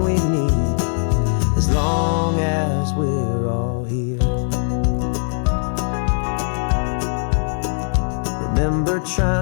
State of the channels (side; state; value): right; silent; 64 dB below the other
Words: we need, as long as we're all here. Remember